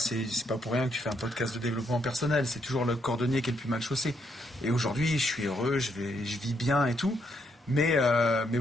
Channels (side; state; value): both; normal; correlation 0.75